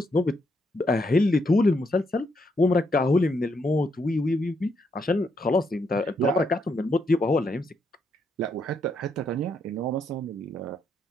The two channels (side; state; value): both; normal; correlation 0.77